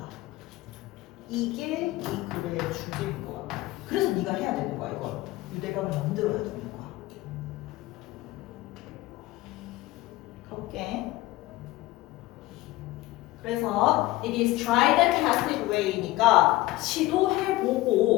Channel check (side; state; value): right; quieter; 18.0 dB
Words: 이게 이 글의 주제인 것 같아. 그래서 네가 해야 되는 거야, 이걸. 유대감을 만들어야 되는 거야. 가볼게. 그래서 it is tried and tested way니까